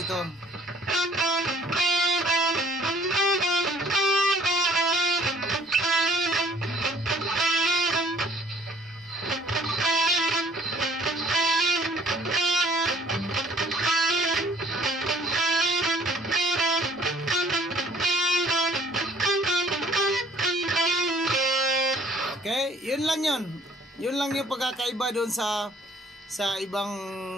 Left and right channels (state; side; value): normal; both; correlation 0.57